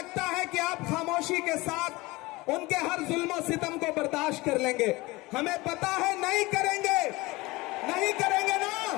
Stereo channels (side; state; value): right; quieter; 21.8 dB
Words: है कि आप खामोशी के साथ उनके हर जुल्म सितम को बर्दाश्त कर लेंगे। हमें पता है नहीं करेंगे, नहीं करेंगे ना,